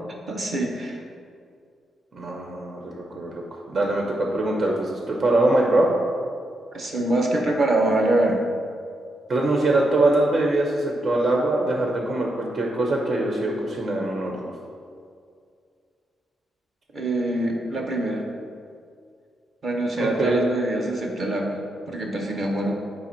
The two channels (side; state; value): both; normal; correlation 0.82